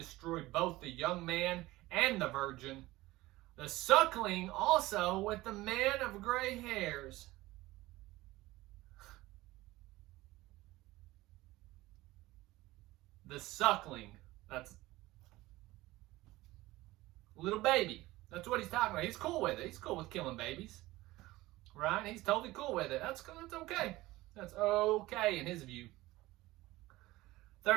both the young man and the virgin, the suckling also with the man of gray hairs. The suckling, that's little baby. That's what he's talking about. He's cool with it. He's cool with killing babies, right? He's totally cool with it. That's okay. That's okay in his view.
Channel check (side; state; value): left; quieter; 18.4 dB